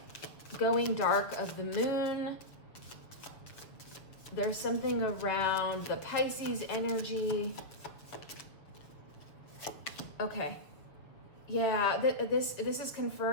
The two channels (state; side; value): late; right; 7.1 ms